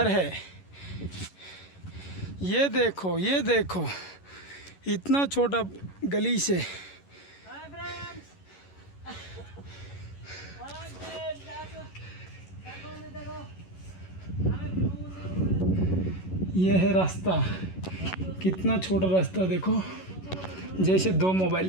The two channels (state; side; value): late; right; 11 ms